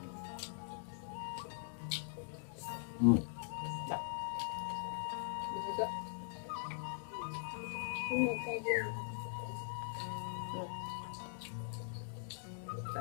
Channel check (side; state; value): right; silent; digital silence